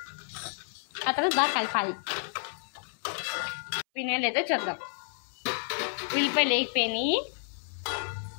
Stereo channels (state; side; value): silent; right; 58 dB below the other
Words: ఆ తర్వాత బాగా కలపాలి. వినేలేదో చూద్దాం. ఉల్లిపాయలు వేగిపోయినాయి.